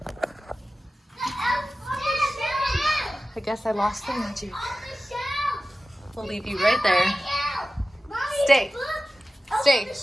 I guess I lost the magic. We'll leave you right there. Stay. Stay.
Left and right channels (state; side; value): normal; both; correlation 0.95